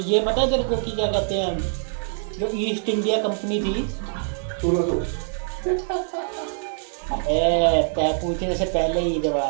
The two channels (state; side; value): silent; left; digital silence